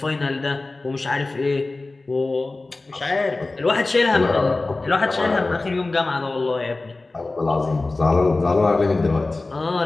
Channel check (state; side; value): quieter; right; 3.3 dB